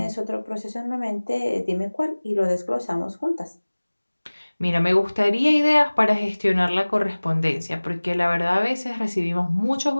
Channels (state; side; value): inverted; both; correlation -1.00